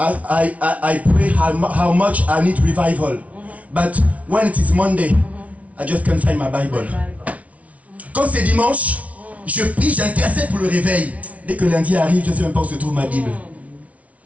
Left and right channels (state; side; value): late; left; 0.067 ms